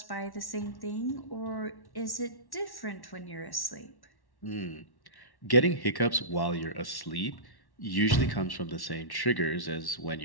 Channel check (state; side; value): late; right; 1.1 ms